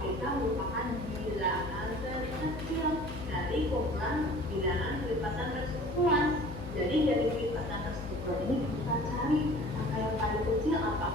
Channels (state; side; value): noise; left; hum, 10 dB below the sound